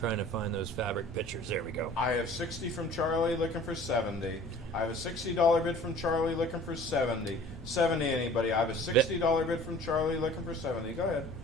to find those fabric pictures. There we go. I have 60 from Charlie looking for 70. I have a $60 bid from Charlie looking for 70. 70 anybody? I have a $60 bid from Charlie looking for 70. Go ahead.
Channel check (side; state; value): both; normal; correlation 0.47